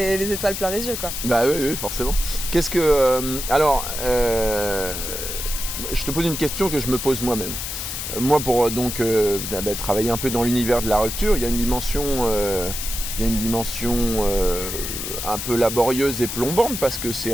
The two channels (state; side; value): noise; left; hiss, 5 dB below the sound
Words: les étoiles plein les yeux quoi. Bah oui, forcément. Qu'est-ce que... je te pose une question que je me pose moi-même. Moi, pour travailler un peu dans l'univers de la rupture, il y a une dimension, un peu laborieuse et plombante parce que c'est